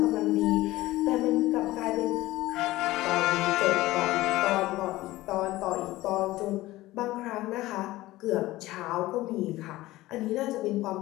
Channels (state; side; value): quieter; right; 17.6 dB